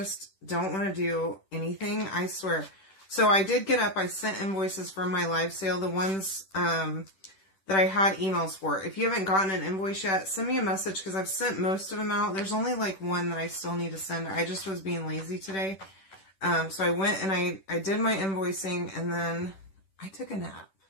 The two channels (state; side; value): late; right; 10 ms